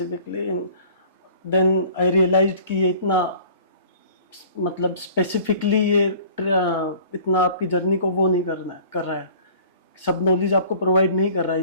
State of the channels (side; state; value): both; inverted; correlation -0.49